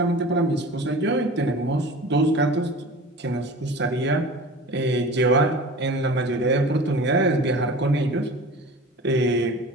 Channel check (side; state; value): both; normal; correlation 0.38